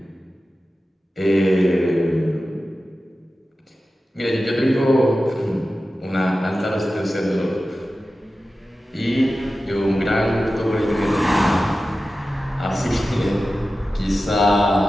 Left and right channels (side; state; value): both; normal; correlation 0.94